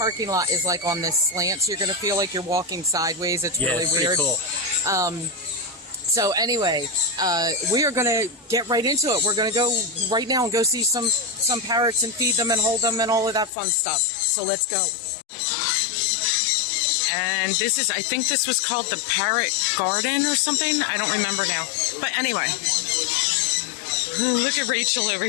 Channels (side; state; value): right; drops out; at 13.5 s